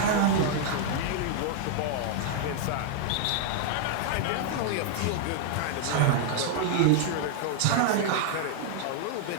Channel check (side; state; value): both; different; correlation 0.00